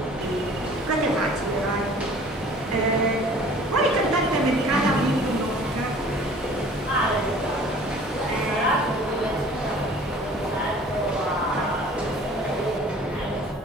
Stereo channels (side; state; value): both; normal; correlation 0.49